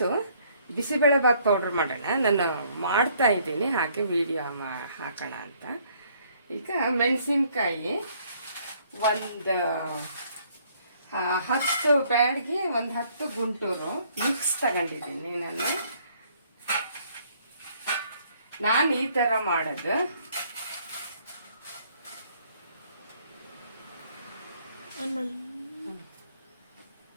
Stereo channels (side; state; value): both; inverted; correlation -0.64